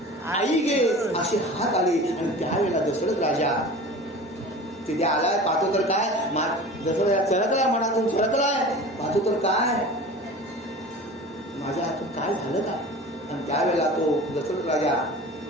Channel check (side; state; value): both; normal; correlation 0.37